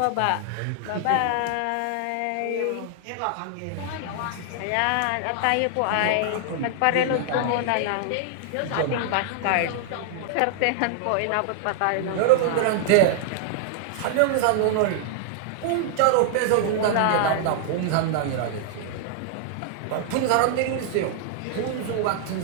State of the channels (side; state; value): both; different; correlation -0.01